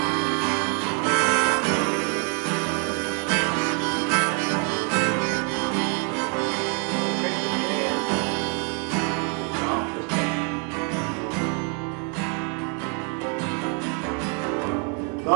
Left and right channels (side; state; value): left; quieter; 37.8 dB